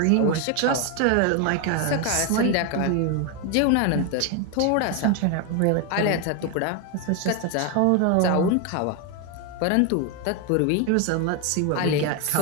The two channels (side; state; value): both; different; correlation 0.01